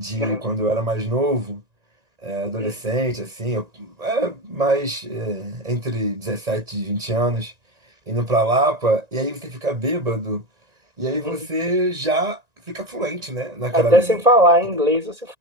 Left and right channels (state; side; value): late; left; 1.9 ms